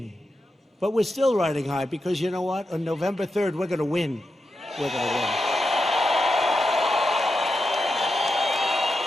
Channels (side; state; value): both; normal; correlation 0.88